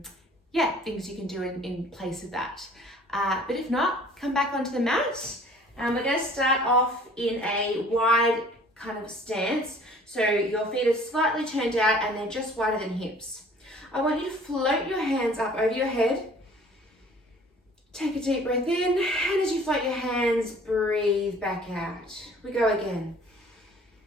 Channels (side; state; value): both; normal; correlation 0.52